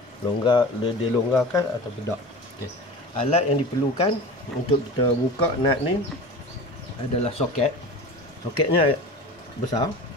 dia longgarkan atau tidak. Okey. Alat yang diperlukan untuk kita buka nut ni adalah soket. Soketnya besar,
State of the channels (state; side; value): normal; both; correlation 0.35